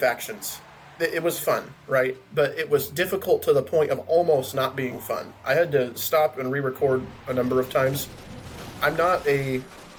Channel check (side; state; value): both; identical; correlation 1.00